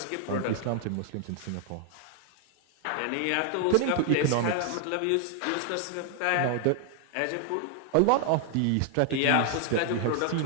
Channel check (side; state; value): both; different; correlation 0.00